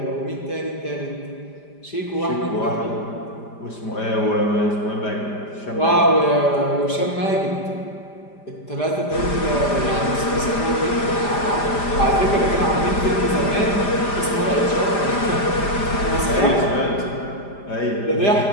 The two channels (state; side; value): late; right; 5.0 ms